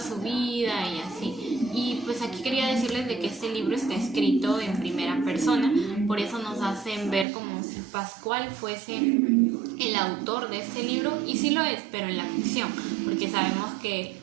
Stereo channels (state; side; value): drops out; left; at 7.2 s